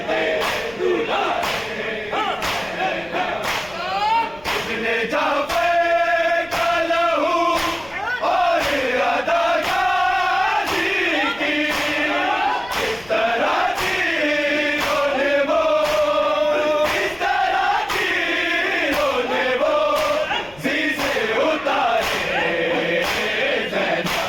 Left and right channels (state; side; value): noise; left; rumble, 24 dB below the sound